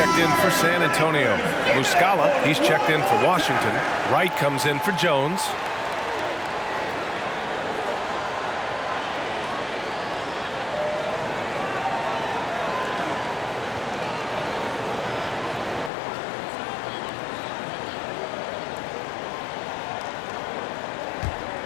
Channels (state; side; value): drops out; right; at 15.9 s